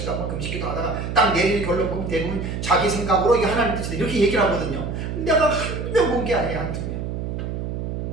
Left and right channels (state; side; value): noise; right; hum, 4 dB below the sound